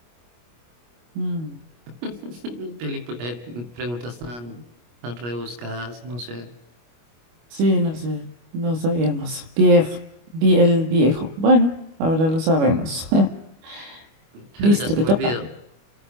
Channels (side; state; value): left; late; 25 ms